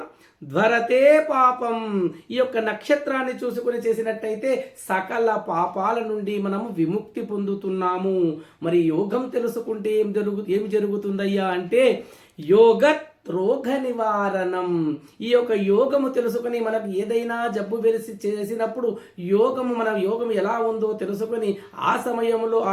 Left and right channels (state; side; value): identical; both; correlation 1.00